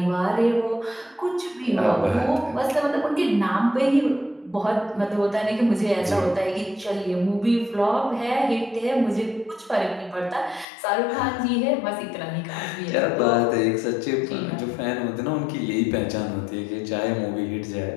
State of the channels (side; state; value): right; drops out; at 10.7 s